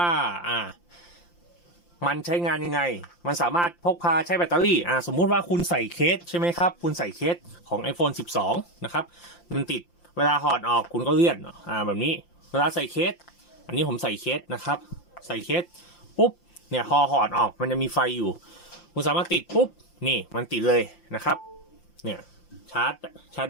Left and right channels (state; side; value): late; right; 5.8 ms